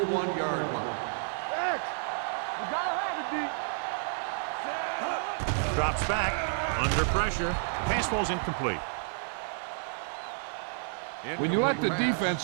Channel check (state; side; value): silent; left; digital silence